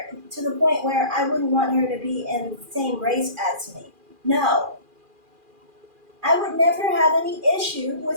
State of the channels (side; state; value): left; late; 2.4 ms